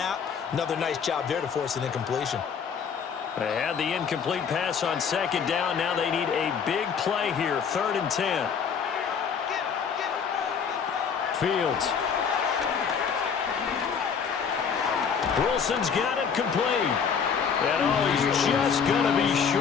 Another nice job there to force an incompletion. They had the incomplete pass on 2nd down. Now they need a big play here. 3rd and 10. Fields. Wilson's got it complete. And he's just going to be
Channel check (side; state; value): right; quieter; 6.7 dB